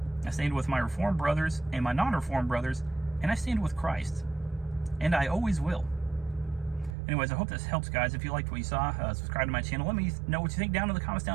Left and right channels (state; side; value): drops out; left; at 7.0 s